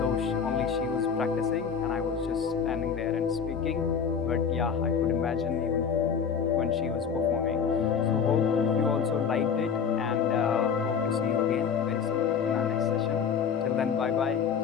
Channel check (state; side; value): quieter; right; 6.8 dB